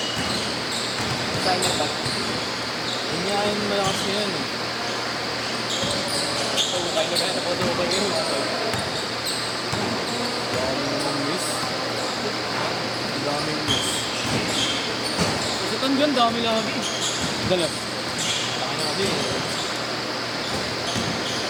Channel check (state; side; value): identical; both; correlation 1.00